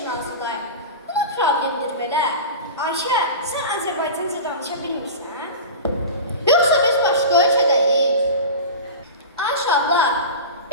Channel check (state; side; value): inverted; both; correlation -0.30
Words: hazırlayın. Bu da problemdir belə. Ayşə, sən Azərbaycanca danışa bilmirsən? Yoxsa biz başqa ölkədəyik? Ayşə abla,